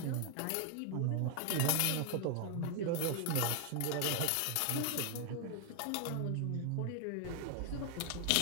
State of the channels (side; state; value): both; different; correlation 0.00